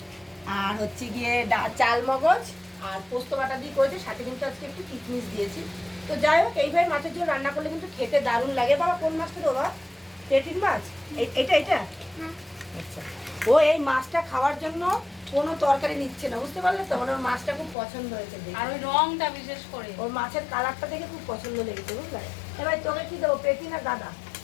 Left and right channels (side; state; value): right; drops out; at 17.8 s